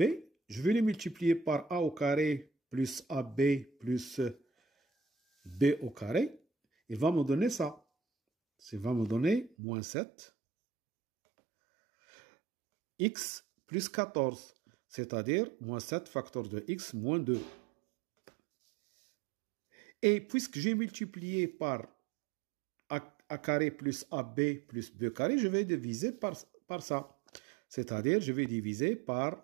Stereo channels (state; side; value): drops out; left; at 9.5 s